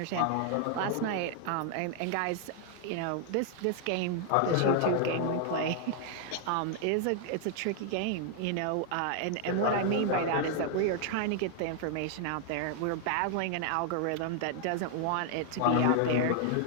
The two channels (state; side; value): different; both; correlation 0.00